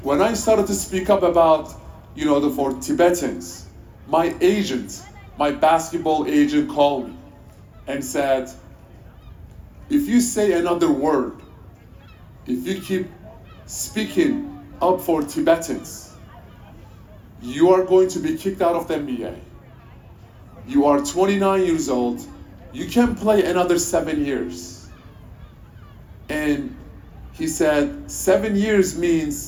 When I started to speak up about, you know, for Tibetans, my agent, my basketball agent called me and said, if you say another word, if you keep speaking up for Tibetans, you are going to be kicked out of the NBA. You are 29 years old. You can play another 7 years. And he said, 7 years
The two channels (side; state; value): both; identical; correlation 1.00